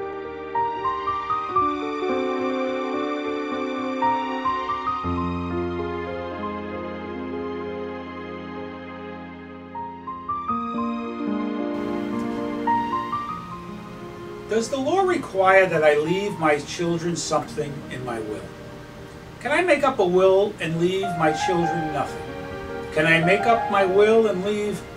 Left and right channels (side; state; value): both; identical; correlation 1.00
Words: the law require that I leave my children something in my will? Can I make up a will and leave my children nothing? Can I make up my will and leave